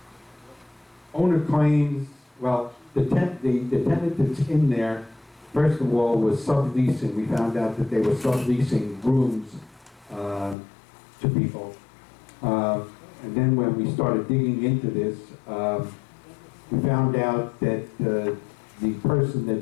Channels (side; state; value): right; drops out; at 10.6 s